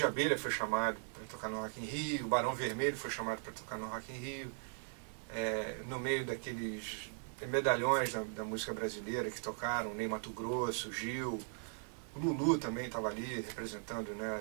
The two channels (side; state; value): left; silent; 52 dB below the other